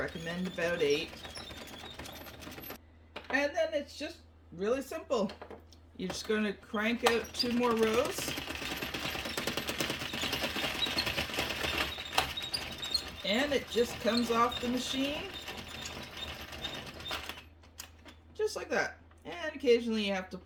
about 8. And then it's just really simple. You're just going to crank out 2 more rows, and it just comes off the machine just like that. And occasionally you have to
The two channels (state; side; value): identical; both; correlation 1.00